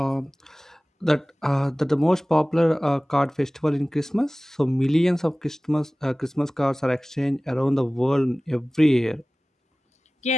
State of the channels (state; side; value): normal; both; correlation 0.98